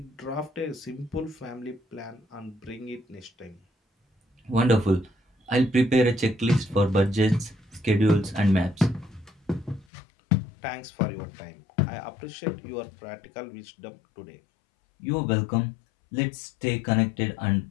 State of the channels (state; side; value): drops out; right; at 9.9 s